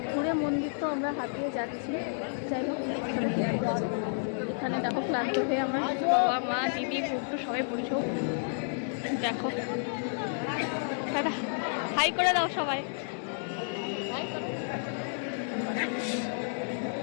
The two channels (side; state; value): right; silent; digital silence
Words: ঘুরে মন্দির তো আমরা হাতিয়ে যাচ্ছি। যাই হোক, এখানে দেখো ক্লান্ত হয়ে আমার বাবা, মা, দিদি, গুড্ডু সবাই বসেও। দেখো দাদা, হাই করে দাও সবাই।